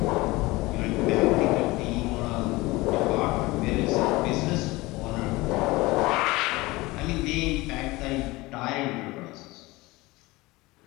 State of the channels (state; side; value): quieter; right; 21.3 dB